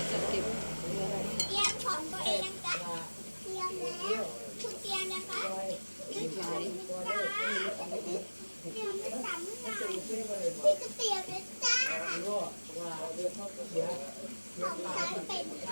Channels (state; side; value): inverted; both; correlation -1.00